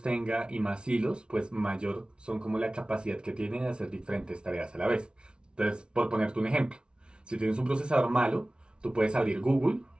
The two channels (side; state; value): left; late; 0.056 ms